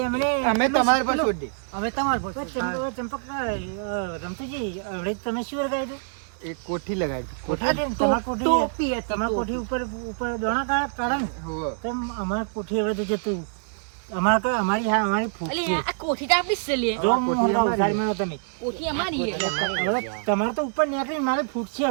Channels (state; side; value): silent; left; digital silence